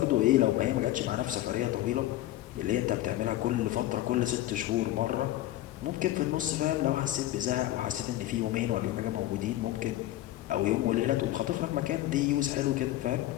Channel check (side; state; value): right; quieter; 14.8 dB